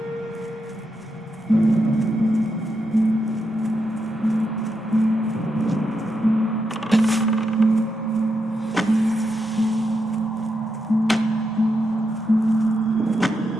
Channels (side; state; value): both; normal; correlation 0.84